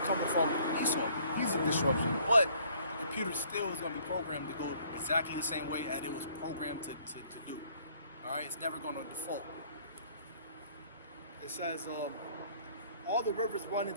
from Esau. He's a disruption. But the computer still is going to be programmed to go exactly the same way as it was programmed to do. All right? It's never going to default. It says, all the rivers run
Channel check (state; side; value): inverted; both; correlation -0.59